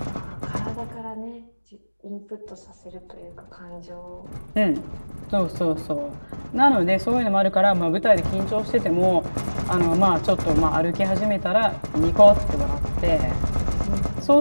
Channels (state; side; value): inverted; both; correlation -1.00